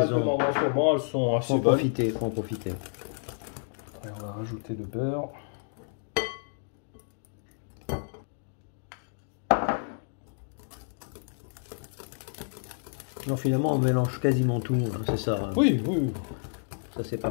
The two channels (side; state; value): right; silent; digital silence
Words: de mangues en ce moment, elles sont assez bonnes. Faut en profiter. Et on va rajouter le beurre. Non, finalement, on mélange quasiment tout, hein, c'est ça. Hein. Oui, oui. Ça c'est pas